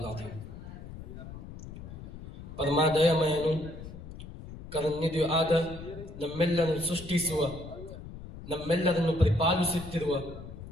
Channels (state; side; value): noise; left; rumble, 13 dB below the sound